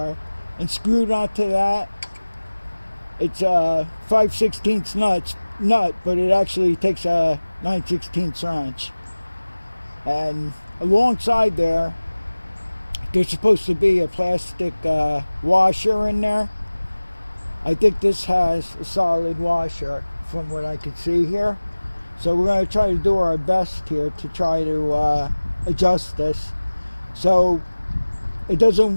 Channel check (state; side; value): inverted; both; correlation -1.00